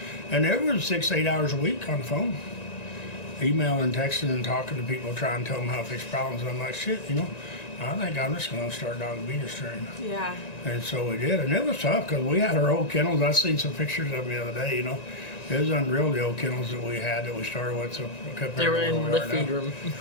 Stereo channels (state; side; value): late; right; 1.9 ms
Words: And there was 6 to 8 hours a week on the phone, emailing, texting, and talking to people, trying to tell them how to fix problems. And I'm like, shit, you know, I think I'm just going to start dog obedience training. Yeah. And so we did, and it was tough because we had our old kennels. I seen some pictures of them the other day, you know. It was unreal, the old kennels that we had that we started with, so compared They were to where in we the are feed now. room.